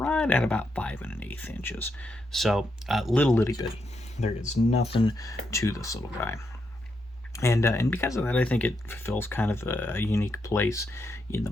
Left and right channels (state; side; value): normal; both; correlation 0.81